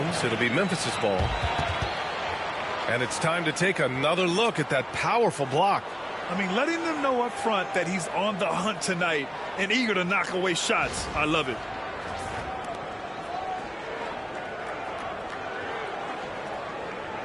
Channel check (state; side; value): identical; both; correlation 1.00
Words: It'll be Memphis's ball. And it's time to take another look at that powerful block. I mean, letting them know up front that he's on the hunt tonight and eager to knock away shots. I love it.